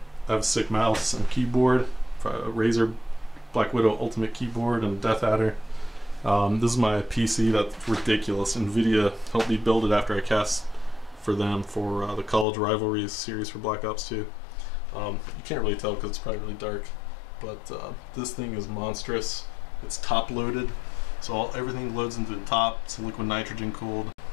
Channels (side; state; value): right; drops out; at 12.5 s